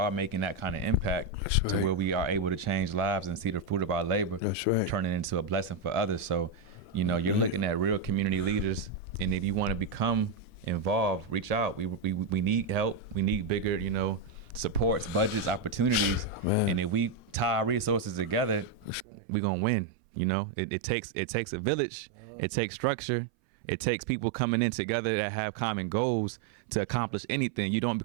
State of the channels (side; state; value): left; drops out; at 19.1 s